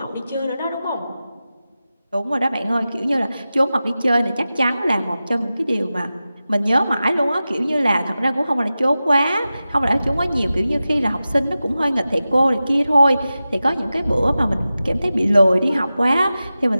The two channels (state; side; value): inverted; both; correlation -0.94